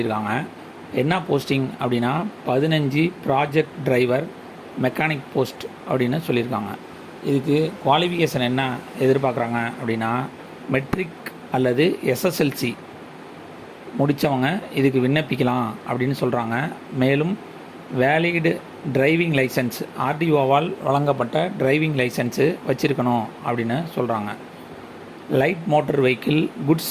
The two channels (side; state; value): both; identical; correlation 1.00